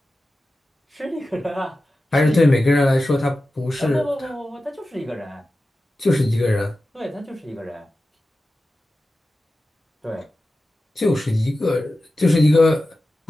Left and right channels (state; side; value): normal; both; correlation 0.94